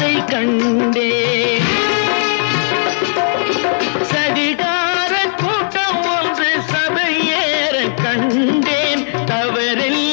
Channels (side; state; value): right; silent; 59 dB below the other